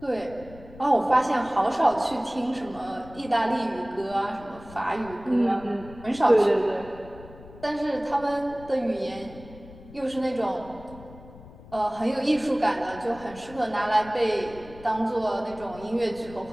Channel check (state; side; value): noise; left; rumble, 19 dB below the sound